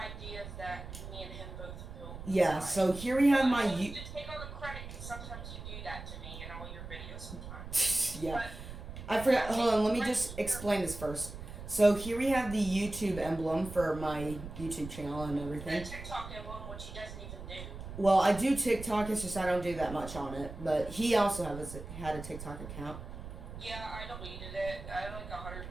that me and him both built. Yeah, so here we have my... I want you to take all the credit, because sometimes you do that to me in all your videos sometimes. yeah. But I forgot. Hold on, let me right just here. explain this first. So here we have the YouTube emblem for my YouTube channel and The everything. TikTok emblem, which he doesn't even do. Well, I do TikTok, it's just I don't do that much on it. But he also had a TikTok account. Yeah, I deleted it. I had like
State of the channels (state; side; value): noise; right; rumble, 11 dB below the sound